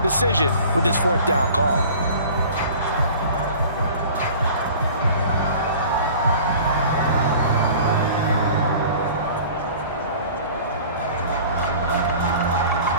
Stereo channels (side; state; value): both; inverted; correlation -0.44